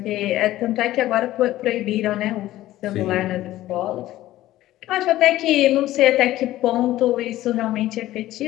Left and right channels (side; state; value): right; quieter; 15.1 dB